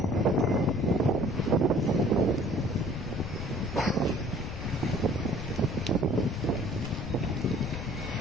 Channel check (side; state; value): left; noise; rumble, 7 dB below the sound